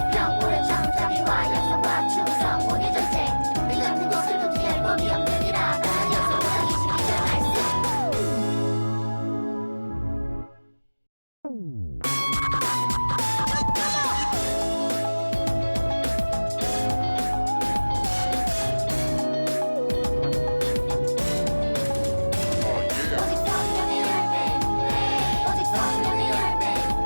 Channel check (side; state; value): both; inverted; correlation -1.00